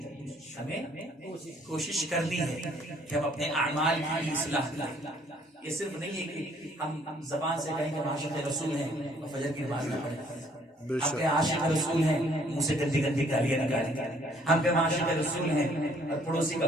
کہ ہم اپنے اعمال کی اصلاح کریں. یہ صرف نہیں ہے کہ ہم زبان سے کہیں کہ ہم عاشق رسول ہیں اور فجر کی نماز نہ پڑھیں. ہم کہ عاشق رسول ہیں منہ سے گندی گندی گالیاں نکالیں. ہم کہ عاشق رسول ہیں اور پڑوسی کا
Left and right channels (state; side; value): normal; both; correlation 0.62